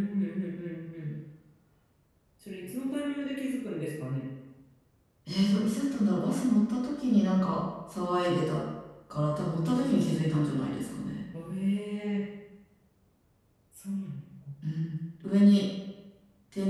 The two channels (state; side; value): identical; both; correlation 1.00